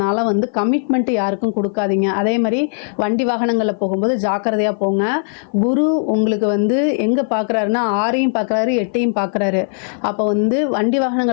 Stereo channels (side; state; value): right; silent; 56 dB below the other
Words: கமிட்மெண்ட் யாருக்கும் கொடுக்காதீங்க. அதே மாதிரி வண்டி வாகனங்களில் போகும்போது ஜாக்கிரதையாக போங்க. குரு உங்களுக்கு எங்கே பார்க்குறாருன்னா 6ஐயும் பார்க்குறாரு, 8ஐயும் பார்க்குறாரு. அப்போ வண்டி